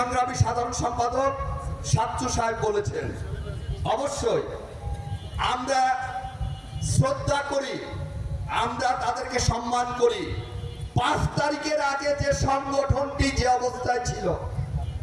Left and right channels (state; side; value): identical; both; correlation 1.00